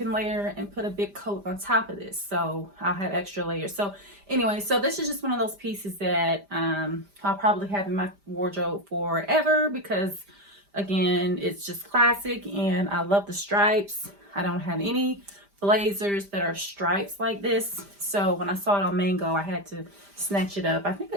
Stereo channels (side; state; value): left; late; 5.0 ms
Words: layer and put a big coat on top of this. So I'll have extra layers. So anyway, so this is just one of those pieces that I'll probably have in my wardrobe forever, because again, it's just classic and I love the stripes. I don't have any blazers that are stripes like this, so when I saw it on Mango, I had to snatch it up. I think